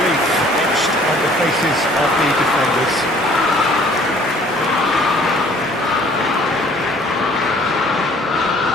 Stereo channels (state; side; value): normal; both; correlation 0.56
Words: etched on the faces of the defenders.